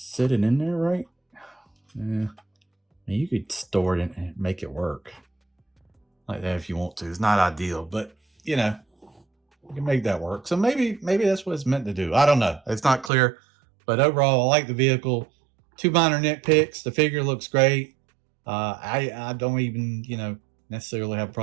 it in there, right? Yeah. You could store it and make it work like that if you want to. It's not ideal, but you know, you can make that work. So maybe that's what it's meant to do. I don't know. It's not clear, but overall, I like the vehicle. Two minor nitpicks. The figure looks great. I don't even, necessarily have a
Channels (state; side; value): drops out; left; at 13.1 s